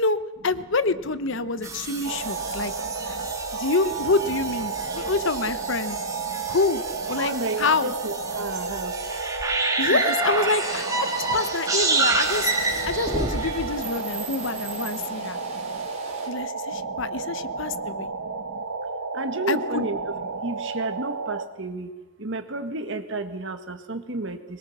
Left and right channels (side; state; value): both; normal; correlation -0.17